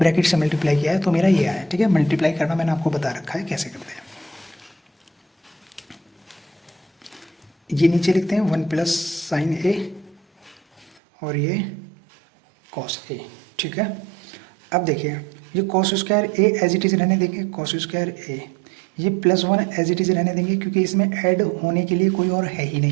से मल्टीप्लाई किया है तो मेरा ये आया, ठीक है। मल्टीप्लाई करना मैंने आपको बता रखा है कैसे करते हैं। ये नीचे लिखते हैं 1 प्लस साइन ए और ये कॉस ए, ठीक है। अब देखिए ये cos square A as it is रहने देंगे, कॉस स्क्वायर ए, ये +1 एज इट इज़ रहने देंगे क्योंकि इसमें ऐड होने के लिए कोई और है ही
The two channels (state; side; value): drops out; left; at 11.0 s